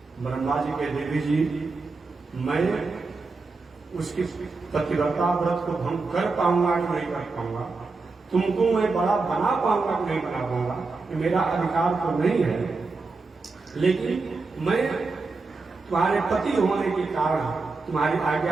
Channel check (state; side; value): quieter; left; 4.0 dB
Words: ब्रह्मा जी के देवी जी मैं उसकी पतिव्रता व्रत को भंग कर पाऊंगा कि नहीं कर पाऊंगा, तुमको मैं बड़ा बना पाऊंगा कि नहीं बना पाऊंगा, मेरा अधिकार तो नहीं है, लेकिन मैं तुम्हारे पति होने के कारण तुम्हारी